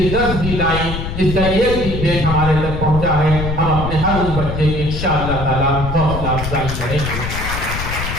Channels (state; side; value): noise; left; rumble, 5 dB below the sound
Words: 10 بھی لائن، جس کا ایک بھی پیج ہمارے تک پہنچا ہے، ہم اپنے ہر اس بچے کی انشاءاللہ تعالیٰ حوصلہ افزائی کریں گے۔